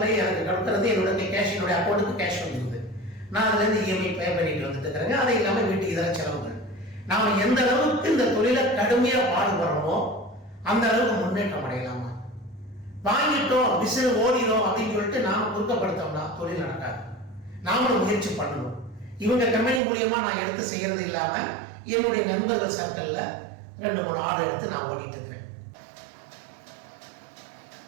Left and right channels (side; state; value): left; drops out; at 19.8 s